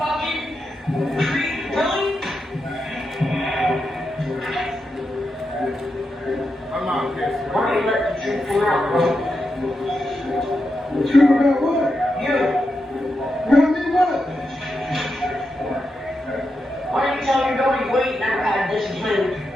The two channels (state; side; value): normal; both; correlation 0.86